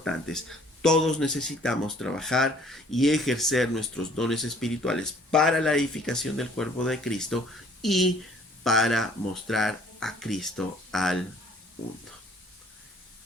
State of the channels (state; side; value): normal; both; correlation 0.57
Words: todos necesitamos trabajar y ejercer nuestros dones espirituales para la edificación del cuerpo de Cristo y para mostrar a Cristo al mundo.